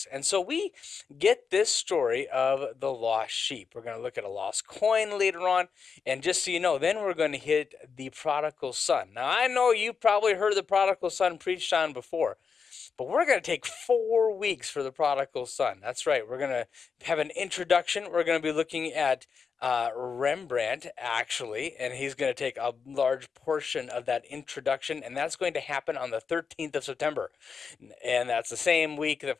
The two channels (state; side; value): quieter; right; 5.8 dB